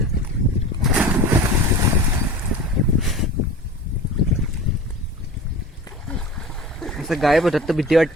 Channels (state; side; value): normal; both; correlation 0.36